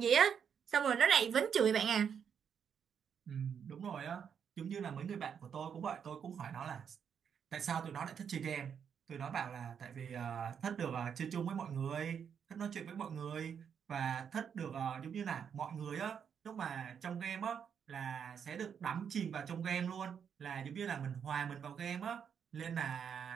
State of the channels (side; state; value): left; quieter; 7.5 dB